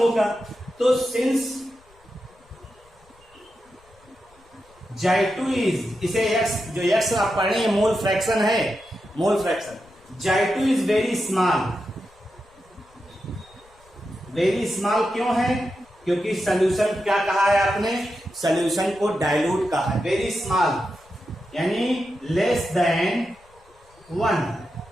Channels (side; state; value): left; noise; rumble, 29 dB below the sound